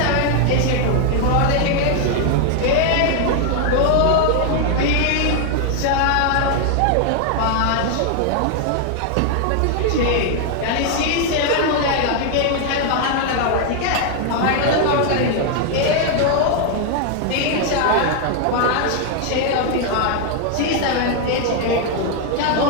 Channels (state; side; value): different; both; correlation 0.00